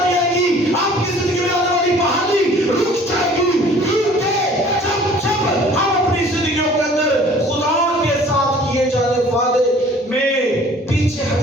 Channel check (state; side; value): normal; both; correlation 0.51